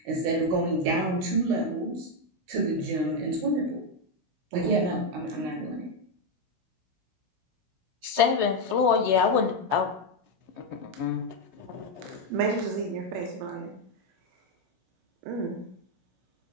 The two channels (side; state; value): left; late; 16 ms